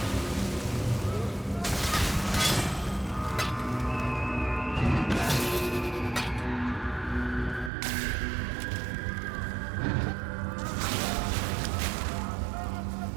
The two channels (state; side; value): drops out; left; at 7.7 s